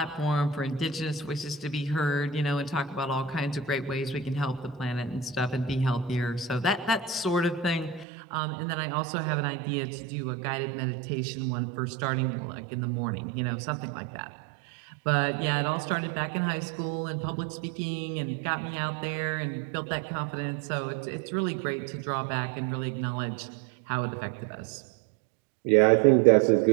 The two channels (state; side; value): drops out; left; at 8.1 s